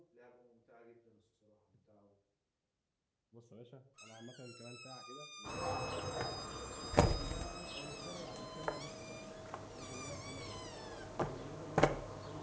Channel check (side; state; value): both; identical; correlation 1.00